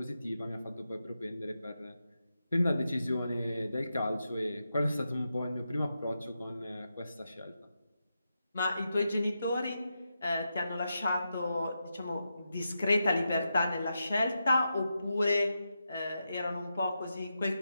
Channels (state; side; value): inverted; both; correlation -0.87